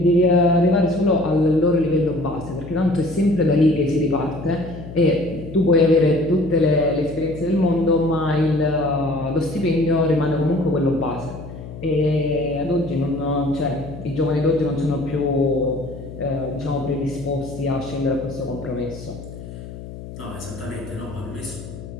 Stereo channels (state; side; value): noise; left; hum, 12 dB below the sound